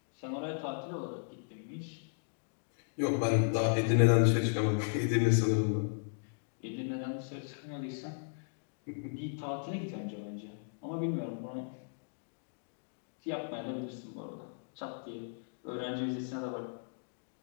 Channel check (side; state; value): right; silent; digital silence